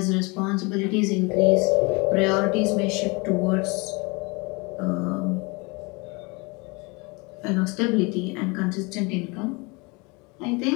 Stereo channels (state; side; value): quieter; right; 27.8 dB